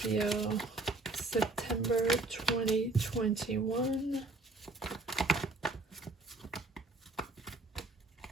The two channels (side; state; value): left; quieter; 3.1 dB